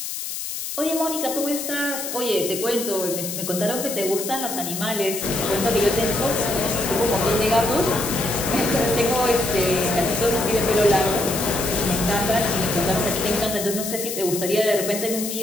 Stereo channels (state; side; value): noise; left; hiss, 6 dB below the sound